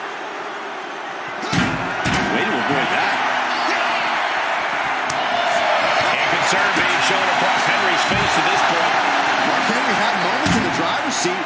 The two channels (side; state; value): both; identical; correlation 1.00